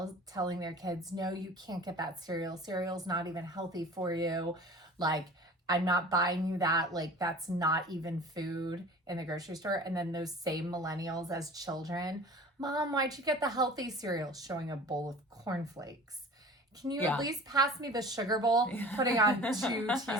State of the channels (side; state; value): both; normal; correlation 0.42